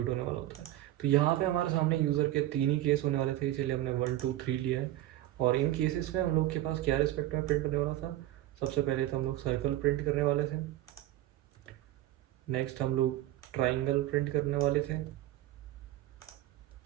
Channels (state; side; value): quieter; left; 14.6 dB